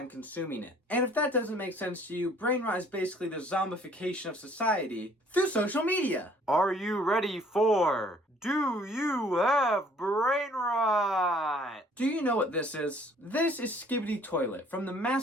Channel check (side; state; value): both; normal; correlation 0.58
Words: consuming it. And if that doesn't make sense to you, brain rot is basically the zombification of society through social media. Are you ready for Do You Have Brain Rot? Do you know what this is? This is Skibidi Toilet from the